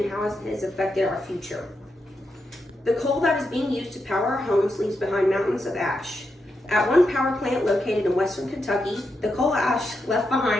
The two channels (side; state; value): both; normal; correlation 0.85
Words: how it has affected our future. The coal that is being used to power our homes leaves behind mountains of ash. At one power plant located in western Kentucky, the coal ash left